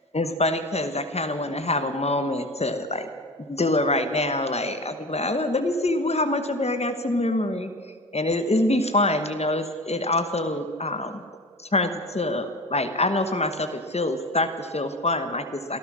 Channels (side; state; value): both; normal; correlation 0.32